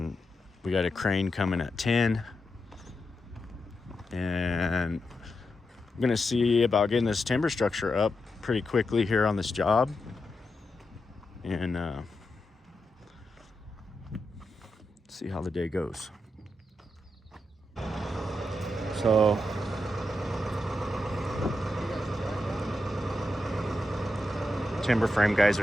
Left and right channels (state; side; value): normal; both; correlation 0.87